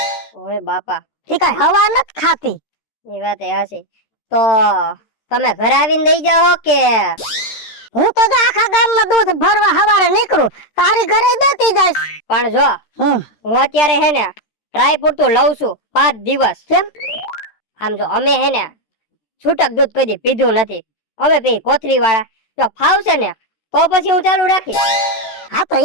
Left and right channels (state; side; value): late; right; 13 ms